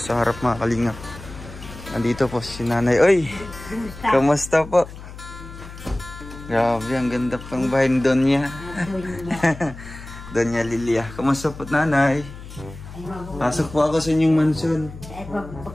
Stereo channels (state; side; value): noise; left; hum, 14 dB below the sound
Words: harap mga kalingap. Nandito po si Nanay. Oy! Kamusta po? Grabe, ang ganda pang bahay ni Donya. Donya Lilia. Kamusta po Nanay? Pasok po ako sa inyong mansion.